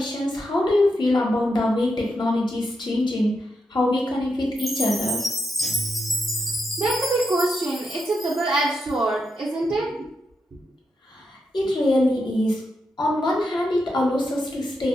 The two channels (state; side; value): normal; both; correlation 0.84